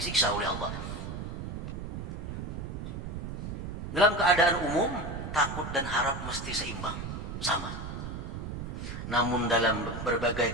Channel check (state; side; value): noise; right; rumble, 6 dB below the sound